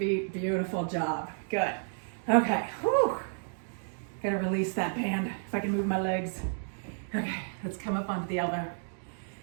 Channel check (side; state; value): left; silent; digital silence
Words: Beautiful job. Good. Okay. Whew. Gotta release that band if I can move my legs. Okay, let's come up onto the elbow.